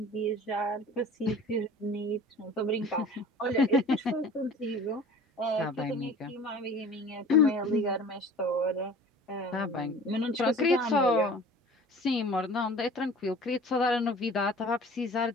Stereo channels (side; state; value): both; normal; correlation 0.44